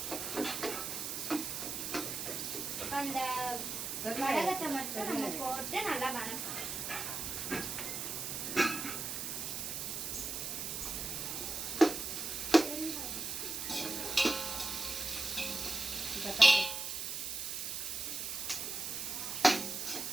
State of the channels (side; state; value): right; noise; hiss, 3 dB below the sound